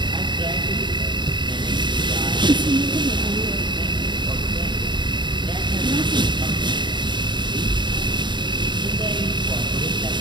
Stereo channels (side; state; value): left; late; 0.22 ms